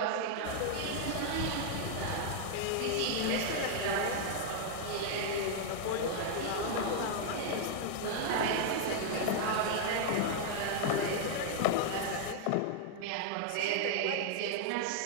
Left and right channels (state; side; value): different; both; correlation 0.00